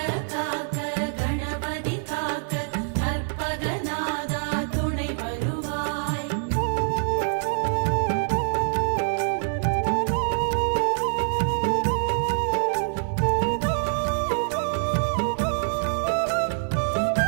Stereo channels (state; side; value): silent; left; 62 dB below the other